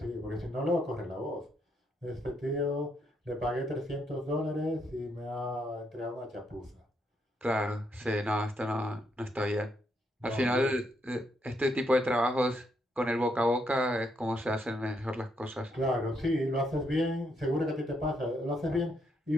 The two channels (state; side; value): normal; both; correlation 0.76